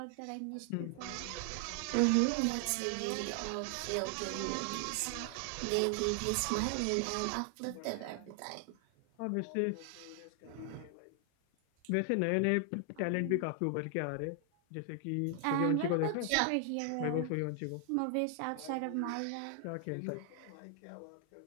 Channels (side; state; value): both; different; correlation 0.00